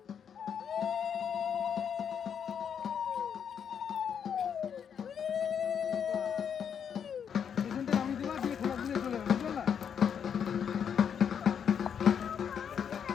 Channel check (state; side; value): quieter; right; 7.7 dB